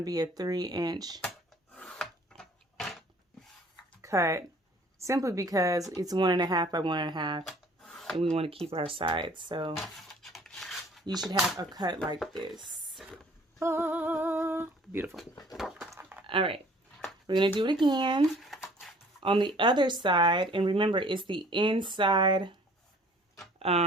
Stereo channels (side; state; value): both; normal; correlation 0.54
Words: be a 3 inch cut. Simply because it's 1.5 by 1.5. And we want to keep our sides. So you should have a cut like this. Oh, beautiful. All right. We're going to do it again On the other side, and remember, it's the inside,